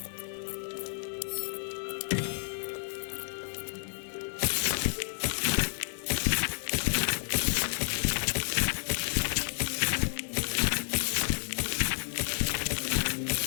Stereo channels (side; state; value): right; silent; digital silence